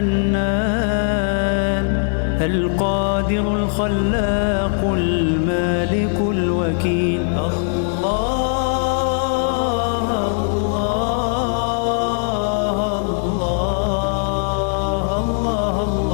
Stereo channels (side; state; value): right; silent; 66 dB below the other